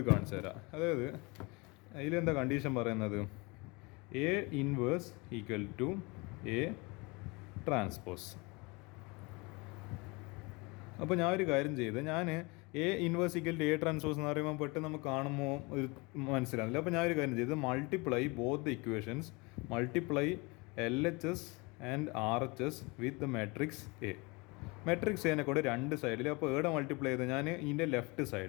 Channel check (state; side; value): quieter; right; 26.9 dB